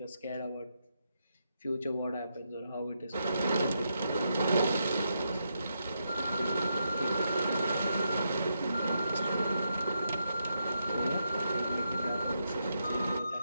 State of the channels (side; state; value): both; inverted; correlation -0.82